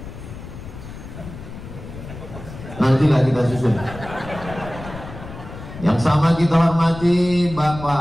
Nantilah kita susun. Yang sama kita hormati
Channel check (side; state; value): left; noise; rumble, 13 dB below the sound